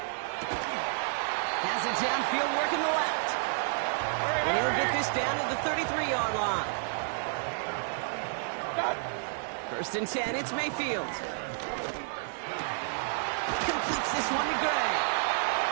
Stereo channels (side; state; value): left; silent; digital silence